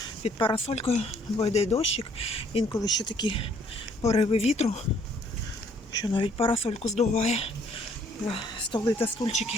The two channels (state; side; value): normal; both; correlation 0.63